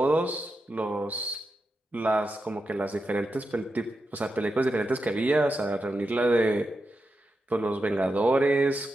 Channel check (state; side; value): normal; both; correlation 0.88